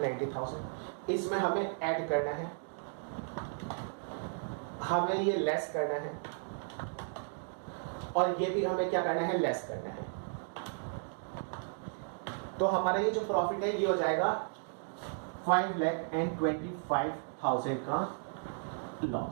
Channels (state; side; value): silent; left; digital silence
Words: इसमें हमें ऐड करना है, हमें ये लेस करना है, और ये भी हमें क्या करना है, लेस करना है। तो हमारा ये जो प्रॉफिट है ये हो जाएगा 5,25,000 का